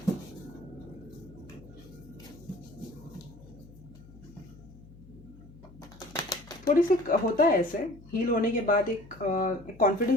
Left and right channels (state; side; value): noise; left; hum, 20 dB below the sound